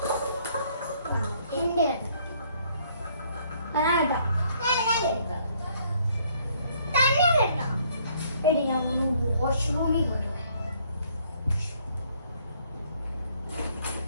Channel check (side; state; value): both; inverted; correlation -0.65